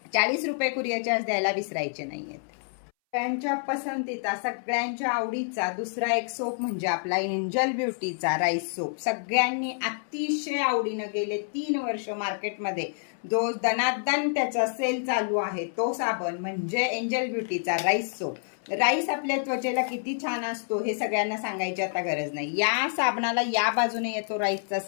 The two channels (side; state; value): right; silent; 59 dB below the other